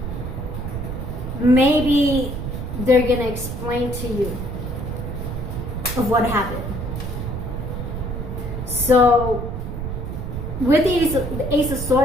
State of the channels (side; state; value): right; noise; rumble, 5 dB below the sound